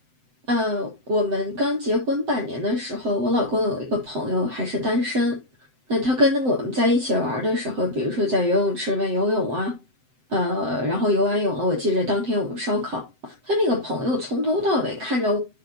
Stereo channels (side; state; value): left; late; 7.8 ms